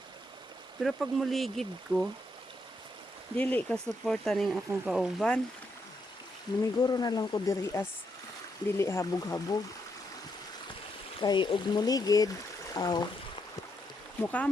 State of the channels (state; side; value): normal; both; correlation 0.78